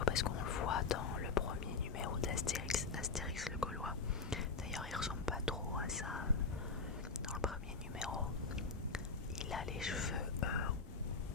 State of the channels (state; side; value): quieter; right; 4.6 dB